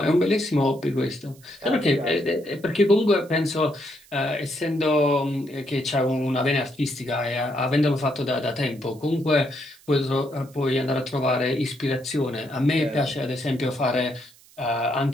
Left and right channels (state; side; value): noise; right; hiss, 26 dB below the sound